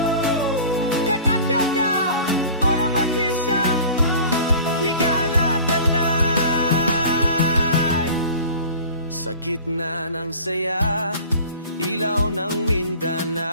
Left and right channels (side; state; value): both; inverted; correlation -0.41